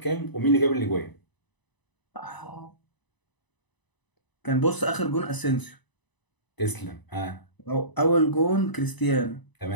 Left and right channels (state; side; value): late; right; 1.0 ms